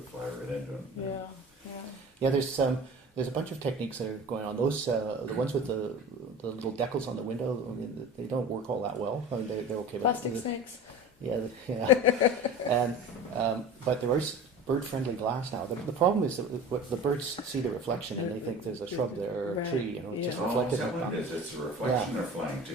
fly right into it. Yeah, there's a bunch of techniques that are going on. Those the ones with the little decals on the window, I mean, they don't work all that well. I mean, they're okay. Plastic snakes. Yeah. And but there is bird-friendly glass now. The problem is that the birds see the reflection and they think there's a shrub there or a tree. You know, it's just reflected. Is that what it is? It's a reflection they're flying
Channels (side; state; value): both; normal; correlation 0.36